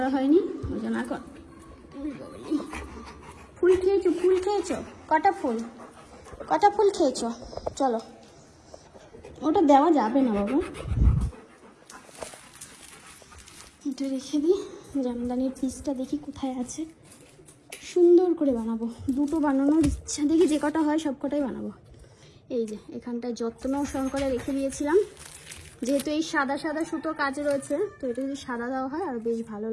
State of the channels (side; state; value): both; identical; correlation 1.00